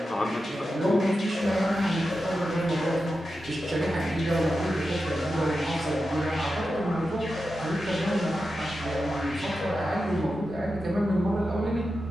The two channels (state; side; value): normal; both; correlation 0.90